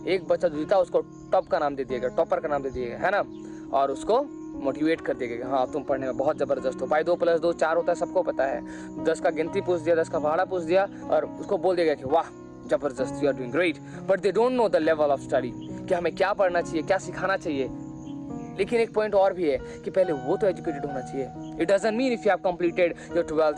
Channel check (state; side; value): identical; both; correlation 1.00